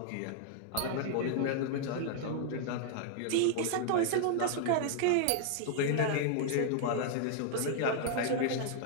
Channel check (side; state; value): both; different; correlation -0.01